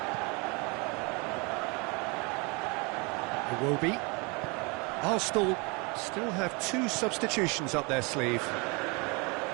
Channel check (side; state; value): left; quieter; 29.8 dB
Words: Iwobi. Arsenal still have 2 substitutions up their sleeve.